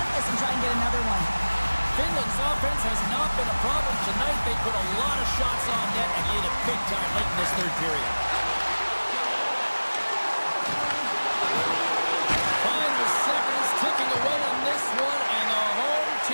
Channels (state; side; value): inverted; both; correlation -1.00